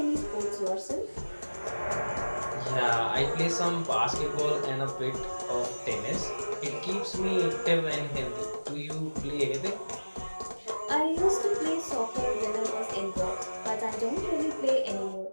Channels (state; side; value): inverted; both; correlation -1.00